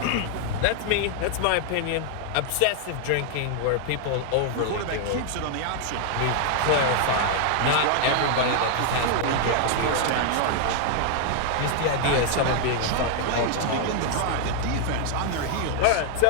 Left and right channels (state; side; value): different; both; correlation 0.00